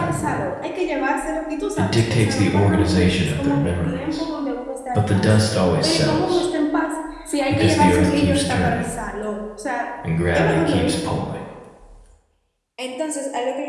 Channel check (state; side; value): identical; both; correlation 1.00